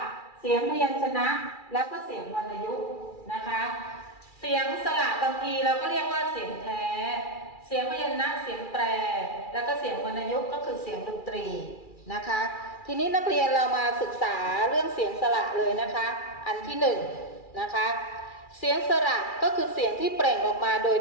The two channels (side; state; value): right; late; 2.4 ms